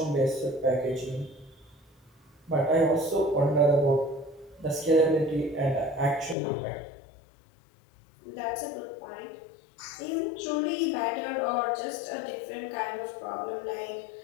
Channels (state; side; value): drops out; right; at 6.4 s